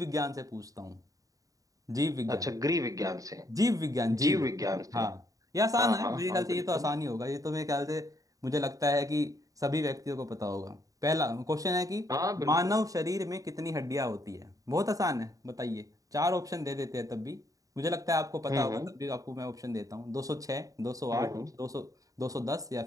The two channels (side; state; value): left; late; 0.17 ms